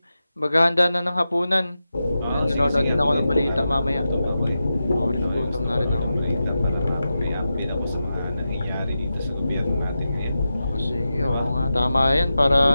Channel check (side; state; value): both; inverted; correlation -0.91